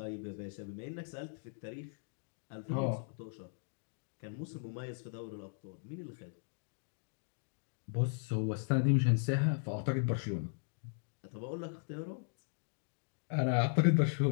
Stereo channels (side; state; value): right; silent; digital silence